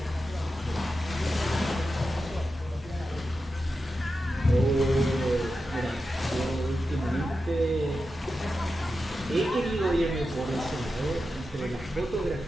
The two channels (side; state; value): both; normal; correlation 0.90